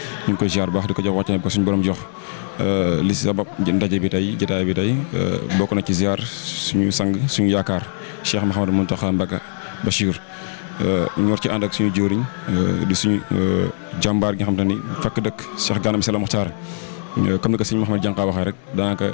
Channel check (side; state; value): right; silent; 60 dB below the other